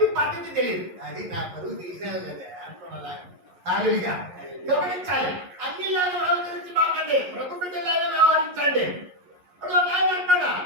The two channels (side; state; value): left; late; 11 ms